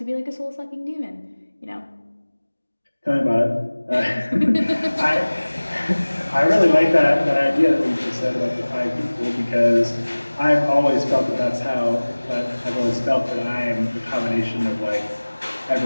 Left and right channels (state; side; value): inverted; both; correlation -1.00